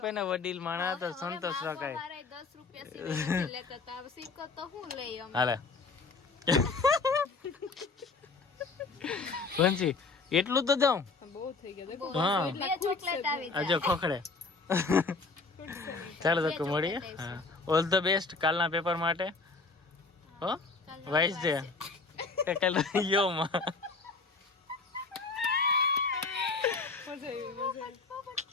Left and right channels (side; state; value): right; quieter; 4.1 dB